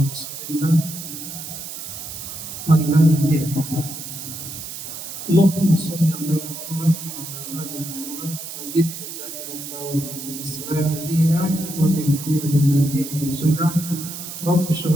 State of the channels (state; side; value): noise; right; hiss, 9 dB below the sound